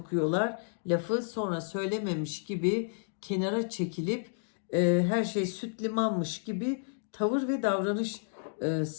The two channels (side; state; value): right; silent; digital silence